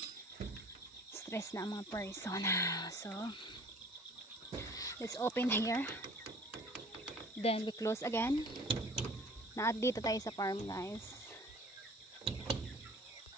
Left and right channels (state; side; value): normal; both; correlation 0.48